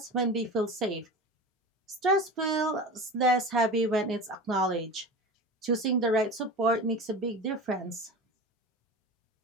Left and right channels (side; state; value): both; normal; correlation 0.31